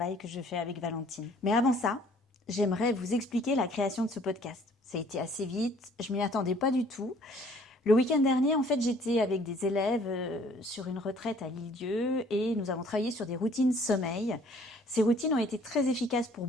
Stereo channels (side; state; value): both; normal; correlation 0.57